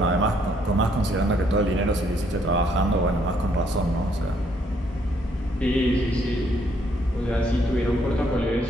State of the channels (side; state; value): both; normal; correlation 0.69